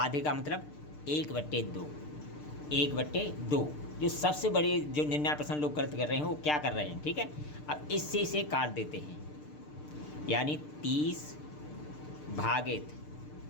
का मतलब 1/2, 1/2। जो सबसे बड़े जो 99% लोग गलत कर रहे हैं वो क्या कर रहे हैं, ठीक है। अब इससे इसे काट देते हैं, यानी 30 भागित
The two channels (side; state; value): right; late; 6.7 ms